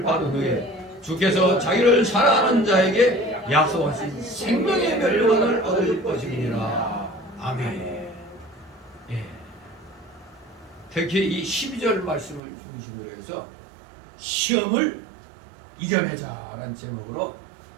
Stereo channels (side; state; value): left; drops out; at 12.4 s